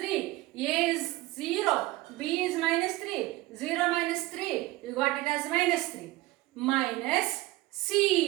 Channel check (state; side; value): quieter; left; 18.6 dB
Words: A is 0. B is minus 3. 0 minus 3. You got it as minus 3. Minus